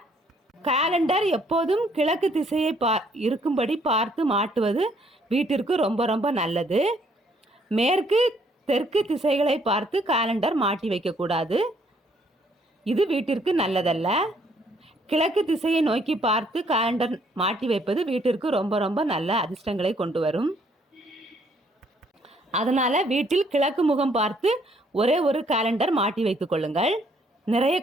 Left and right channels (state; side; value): normal; both; correlation 0.66